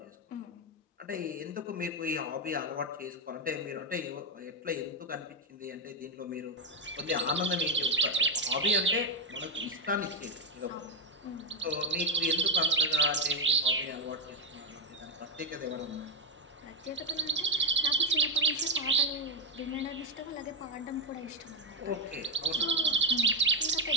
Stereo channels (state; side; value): normal; both; correlation 0.06